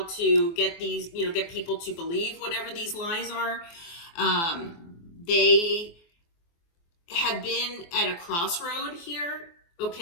to get get people to believe whatever these lies are. They have been at a crossroad here,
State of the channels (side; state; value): right; late; 24 ms